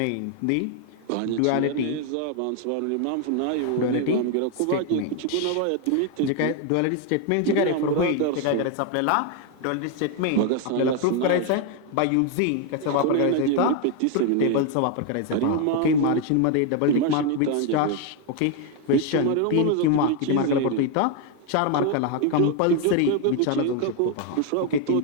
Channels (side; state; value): both; different; correlation 0.01